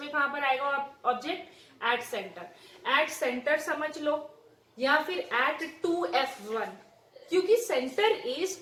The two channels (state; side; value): identical; both; correlation 1.00